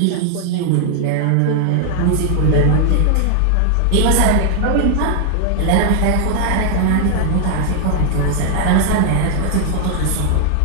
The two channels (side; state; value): both; different; correlation 0.00